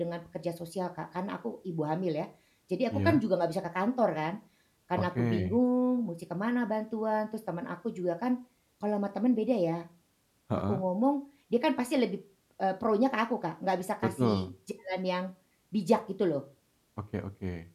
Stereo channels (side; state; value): both; identical; correlation 1.00